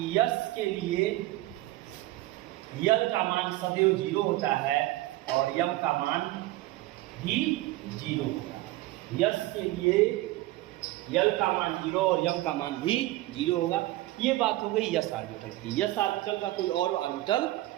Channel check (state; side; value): quieter; left; 17.5 dB